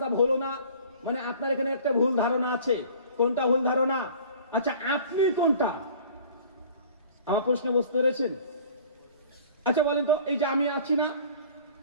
হলো না। মানে আপনার এখানে একটা ভুল ধারণা আছে। কোনটা ভুল ধারণা? আচ্ছা আপনি কোনটা? আমার প্রশ্ন বুঝতে পেরেছেন? আচ্ছা বলেন তো, এই যে আমি আছি না,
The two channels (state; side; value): inverted; both; correlation -0.47